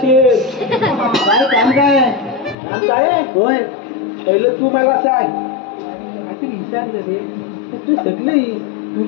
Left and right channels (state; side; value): drops out; right; at 2.6 s